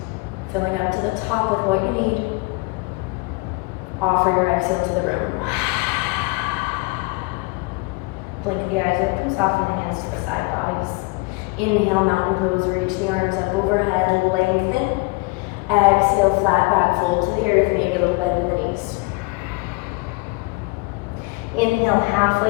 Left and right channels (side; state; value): right; quieter; 27.5 dB